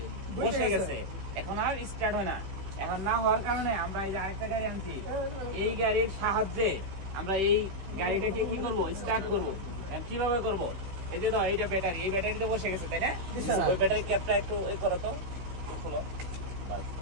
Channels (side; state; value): left; late; 15 ms